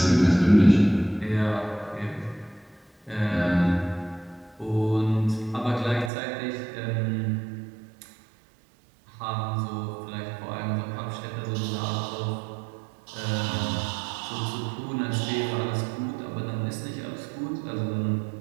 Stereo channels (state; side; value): drops out; left; at 6.1 s